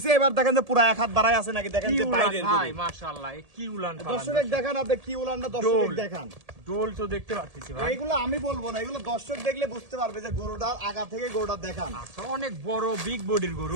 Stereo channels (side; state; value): left; late; 1.7 ms